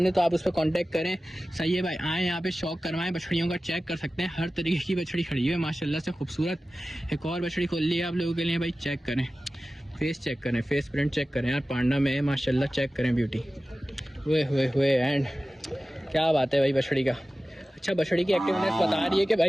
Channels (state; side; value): normal; both; correlation 0.96